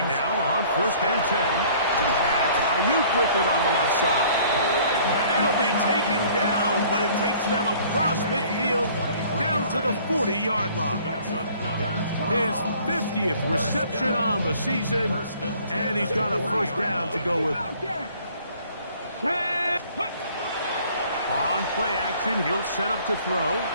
now on 1st and 10. That's Ayuk with it on the left side. It'll be taken down, but it takes them across midfield down to the 40-yard line. His 50th reception on the season, and he's got a first down to go with it. On play action, he'll set up to throw.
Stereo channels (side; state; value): both; inverted; correlation -0.54